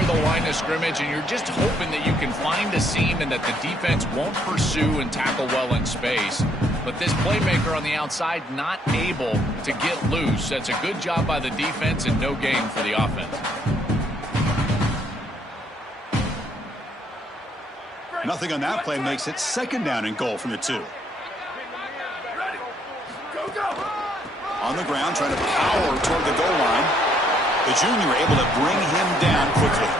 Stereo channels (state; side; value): normal; both; correlation 0.69